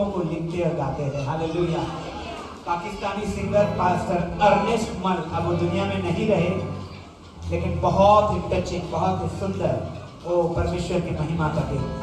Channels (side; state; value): both; identical; correlation 1.00